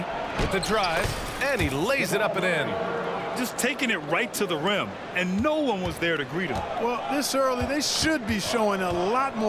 with the drive, and he lays it up and in. Just taking it right to the rim, and no one was there to greet him. Well, this early, they should be showing a lot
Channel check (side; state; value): both; identical; correlation 1.00